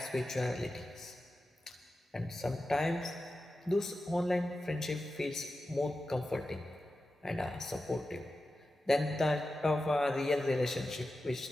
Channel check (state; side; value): normal; both; correlation 0.92